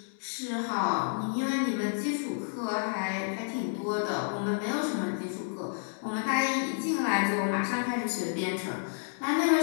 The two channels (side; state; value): right; silent; digital silence